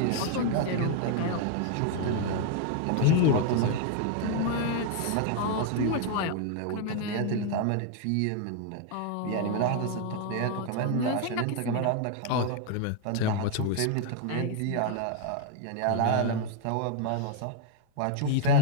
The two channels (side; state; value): both; different; correlation 0.00